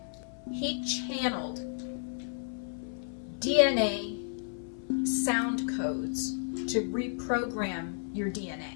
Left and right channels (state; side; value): silent; right; 56 dB below the other